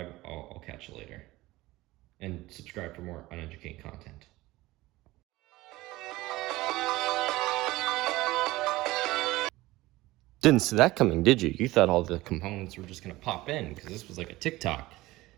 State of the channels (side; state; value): left; quieter; 18.7 dB